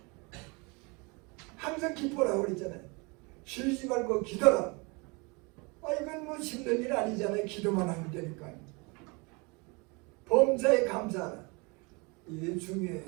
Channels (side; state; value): left; quieter; 28.9 dB